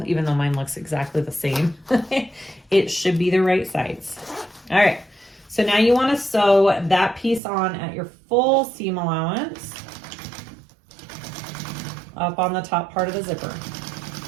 even though mine looks exactly the same. It should be the right sides. All right, so now you want to sew that piece on at your full seam allowance up on the top part of the zipper.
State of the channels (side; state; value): left; drops out; at 7.4 s